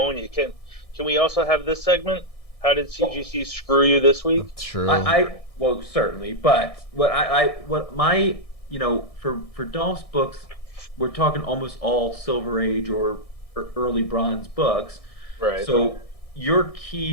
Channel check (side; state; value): right; late; 1.6 ms